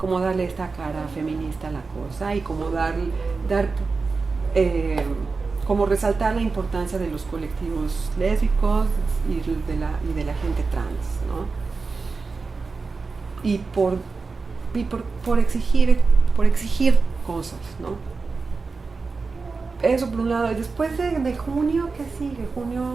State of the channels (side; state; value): left; quieter; 4.3 dB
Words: darle esta cara feminista a la cosa y como como resaltar la importancia de los colectivos lésbicos y de la gente trans, ¿no? Y por exigir cosas, ¿no? Eso por un lado. Y después de junio, ¿qué sigue?